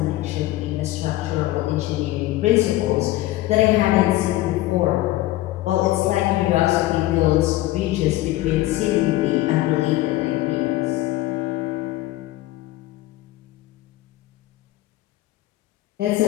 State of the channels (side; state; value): right; quieter; 16.7 dB